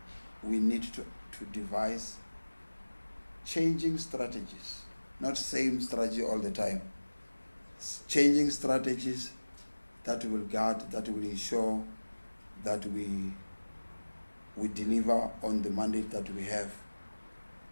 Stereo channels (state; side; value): inverted; both; correlation -1.00